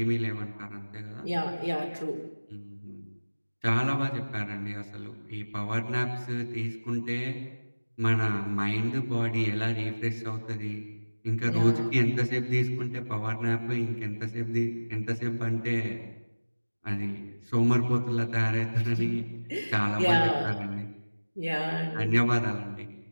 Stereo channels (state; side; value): inverted; both; correlation -1.00